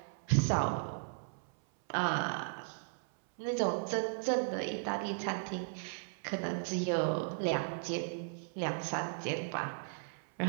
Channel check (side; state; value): left; silent; 54 dB below the other